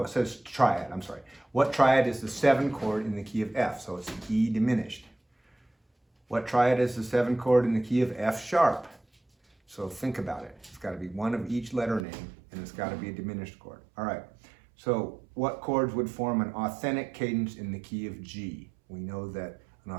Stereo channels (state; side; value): drops out; left; at 12.1 s